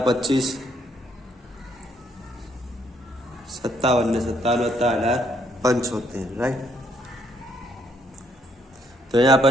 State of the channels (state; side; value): normal; both; correlation 0.70